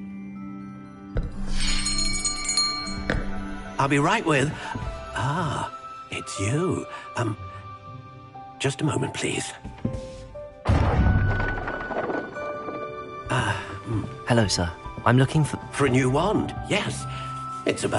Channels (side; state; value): both; identical; correlation 1.00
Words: I'll be right with... Ah, it's you. Just a moment, please. Hello, sir. I'm looking for... For a new wand, yes. It's